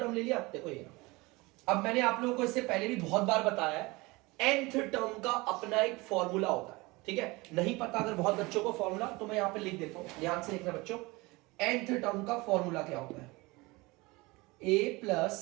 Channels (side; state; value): left; quieter; 23.5 dB